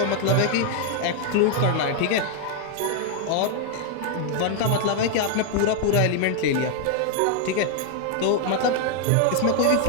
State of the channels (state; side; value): different; both; correlation 0.00